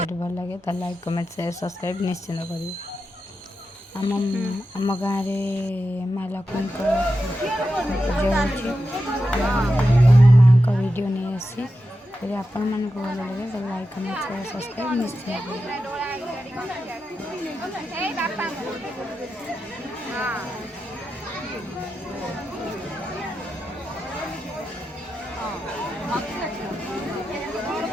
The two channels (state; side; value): normal; both; correlation 0.90